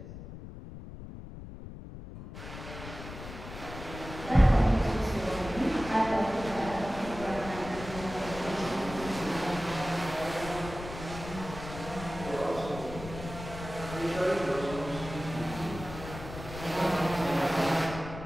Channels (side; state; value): left; noise; rumble, 11 dB below the sound